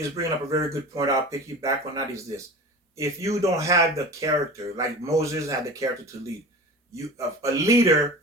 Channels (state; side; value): normal; both; correlation 0.34